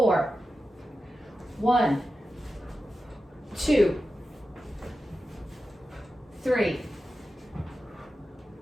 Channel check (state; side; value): normal; both; correlation 0.92